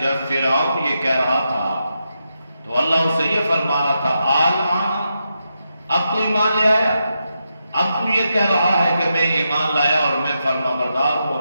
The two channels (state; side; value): inverted; both; correlation -0.86